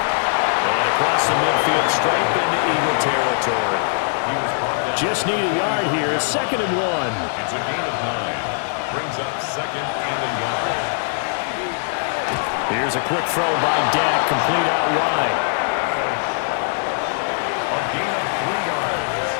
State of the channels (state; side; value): silent; right; digital silence